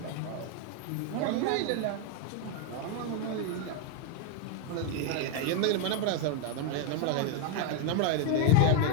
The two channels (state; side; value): different; both; correlation 0.01